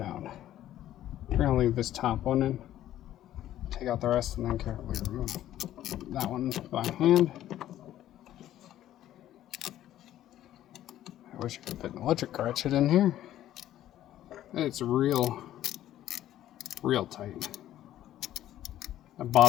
We're gonna leave this top one in. Take out the rest and then carefully remove that one by hand. I wish I could fit an electric ratchet in here. It's real tight. The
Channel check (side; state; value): right; quieter; 12.7 dB